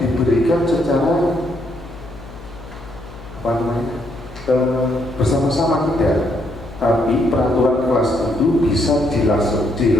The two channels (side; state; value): left; noise; hum, 17 dB below the sound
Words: diberikan secara apa namanya bersama-sama, tidak. Tapi peraturan kelas itu bisa